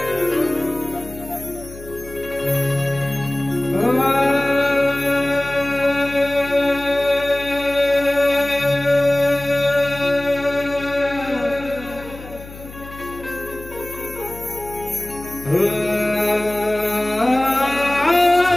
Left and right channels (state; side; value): noise; left; hum, 16 dB below the sound